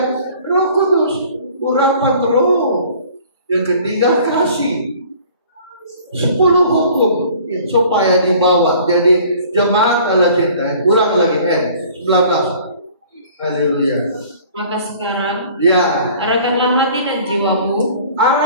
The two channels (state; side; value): inverted; both; correlation -0.51